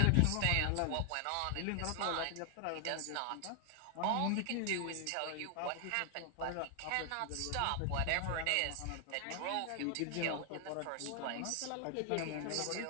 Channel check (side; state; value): both; different; correlation 0.00